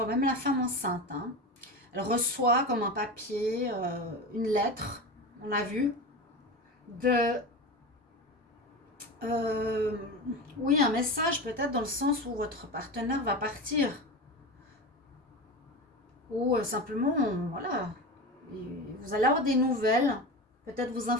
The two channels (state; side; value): normal; both; correlation 0.25